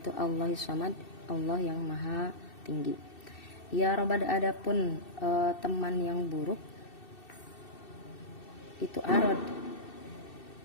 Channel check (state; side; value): late; right; 2.7 ms